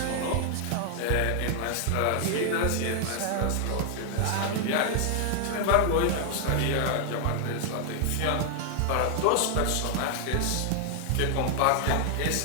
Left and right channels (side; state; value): both; different; correlation 0.00